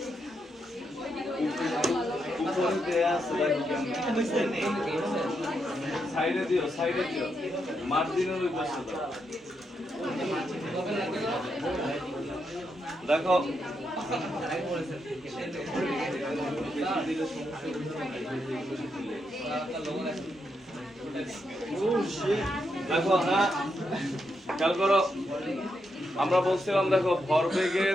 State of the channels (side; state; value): both; normal; correlation 0.82